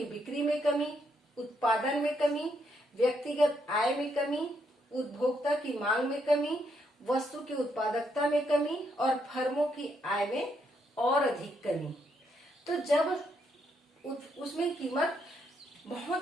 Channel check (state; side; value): normal; both; correlation 0.76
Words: बिक्री में कमी, उत्पादन में कमी, व्यक्तिगत आय में कमी, उपभोक्ता की मांग में कमी, वस्तु की उत्पादकता में कमी और फर्मों की आय में और अधिक कमी। तो जब उसमें कीमत